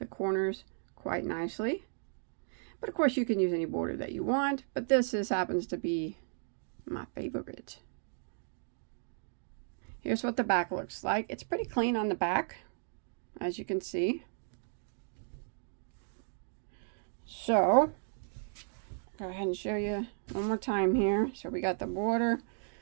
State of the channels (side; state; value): left; silent; digital silence